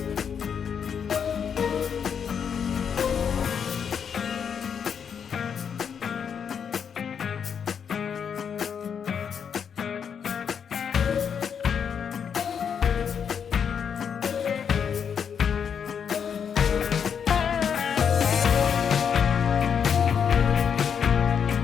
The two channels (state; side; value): quieter; right; 7.3 dB